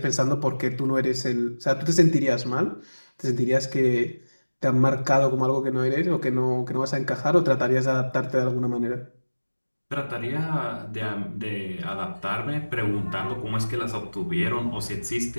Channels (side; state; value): both; inverted; correlation -1.00